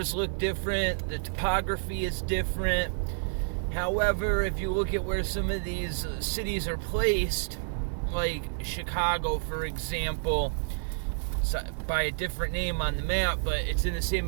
look different, the topography is different. However, if you look at where some of these cities are placed, like Chicago, for example, it's by a different name on the map, but it's in the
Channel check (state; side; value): silent; left; digital silence